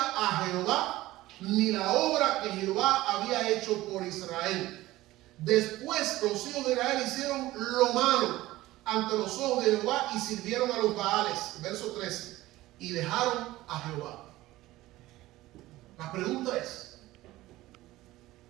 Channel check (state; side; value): quieter; left; 17.2 dB